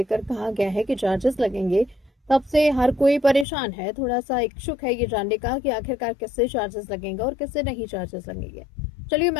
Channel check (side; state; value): right; drops out; at 3.5 s